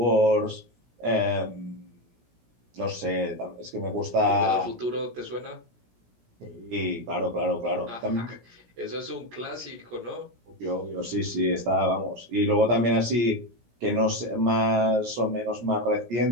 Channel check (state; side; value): late; left; 17 ms